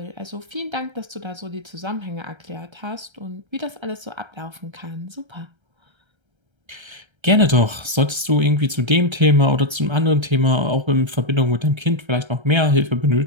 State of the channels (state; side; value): late; left; 1.3 ms